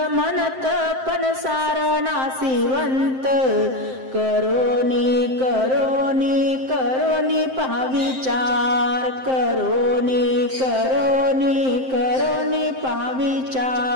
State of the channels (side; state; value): left; late; 7.7 ms